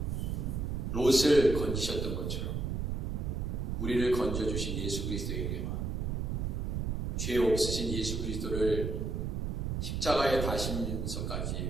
롯을 건지셨던 것처럼 우리를 건져주신 예수 그리스도에게만, 죄 없으신 예수 그리스도를 십자가에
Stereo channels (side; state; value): right; noise; rumble, 1 dB below the sound